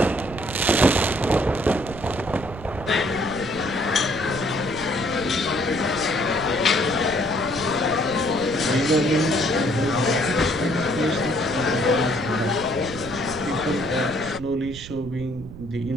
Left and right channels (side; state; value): right; noise; rumble, 13 dB below the sound